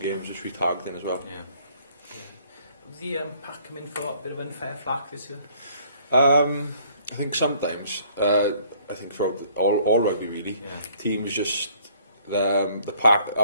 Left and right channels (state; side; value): inverted; both; correlation -0.60